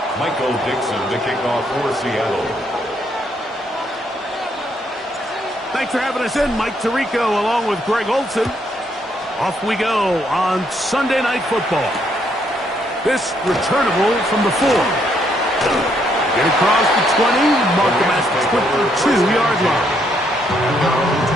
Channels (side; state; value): both; normal; correlation 0.73